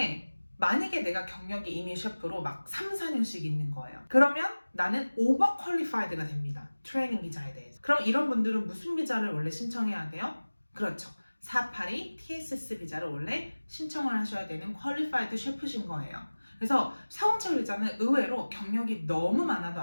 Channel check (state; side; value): inverted; both; correlation -1.00